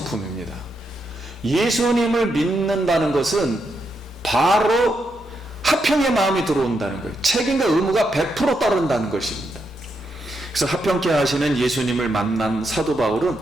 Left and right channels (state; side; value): normal; both; correlation 0.81